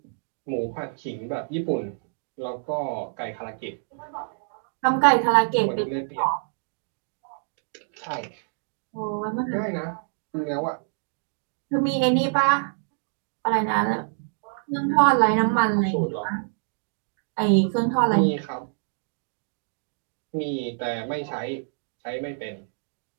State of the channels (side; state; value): left; silent; digital silence